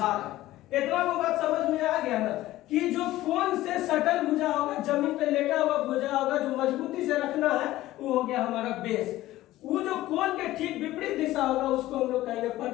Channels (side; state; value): right; quieter; 15.9 dB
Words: है। इतना वो बात समझ में आ गया ना कि जो कोण से सटल भुजा होगा, जमीन पे लेटा हुआ भुजा होगा, जो मजबूती से रखना है वो हो गया हमारा बेस। वो जो कोण के ठीक विपरीत दिशा होगा उसको हम लोग कहेंगे